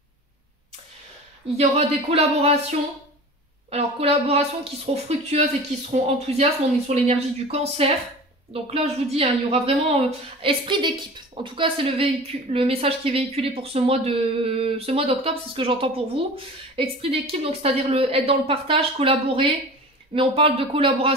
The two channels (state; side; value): normal; both; correlation 0.37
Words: Il y aura des collaborations, alors collaborations qui seront fructueuses et qui seront enthousiastes, on est sur l'énergie du Cancer. Donc là, je vous dis, hein, il y aura vraiment esprit d'équipe. En tout cas, c'est le message qui est véhiculé pour ce mois d'octobre, c'est ce que j'entends pour vous. Esprit d'équipe, donc c'est-à-dire être dans le partage, collaborer, mais on parle de